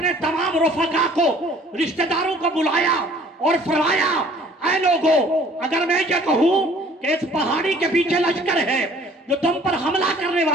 تمام رفقا کو، رشتہ داروں کو بلایا اور فرمایا، اے لوگو، اگر میں یہ کہوں کہ اس پہاڑی کے پیچھے لشکر ہے جو تم پر حملہ کرنے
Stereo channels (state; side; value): normal; both; correlation 0.54